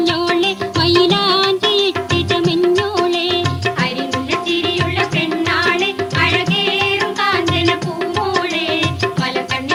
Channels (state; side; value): identical; both; correlation 1.00